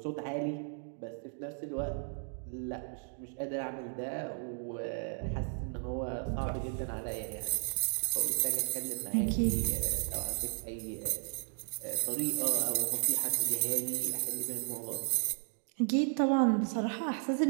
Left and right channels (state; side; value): silent; left; 55 dB below the other